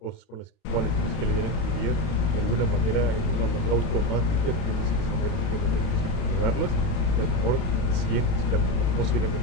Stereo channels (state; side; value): late; right; 32 ms